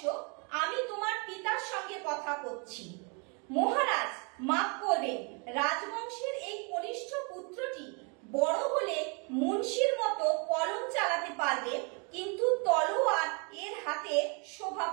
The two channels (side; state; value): left; quieter; 34.6 dB